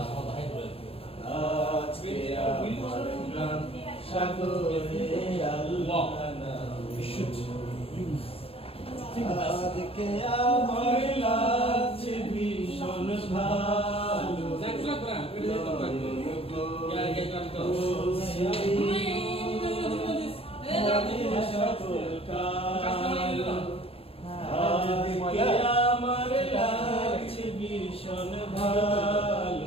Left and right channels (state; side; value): late; right; 0.28 ms